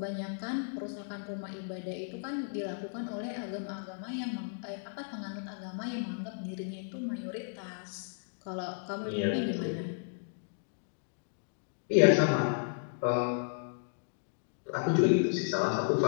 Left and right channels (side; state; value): right; silent; digital silence